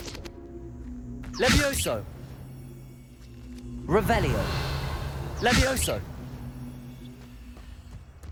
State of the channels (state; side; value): identical; both; correlation 1.00